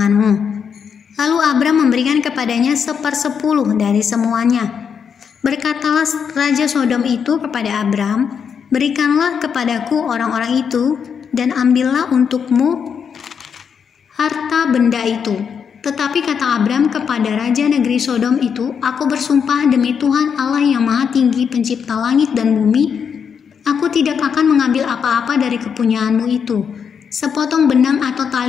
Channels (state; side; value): quieter; right; 6.9 dB